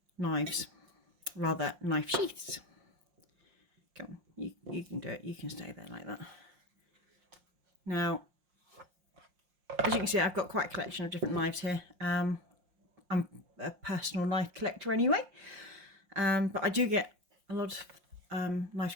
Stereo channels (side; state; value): left; late; 5.6 ms